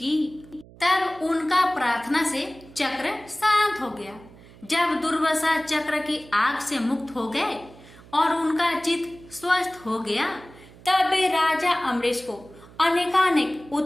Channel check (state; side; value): noise; right; hum, 22 dB below the sound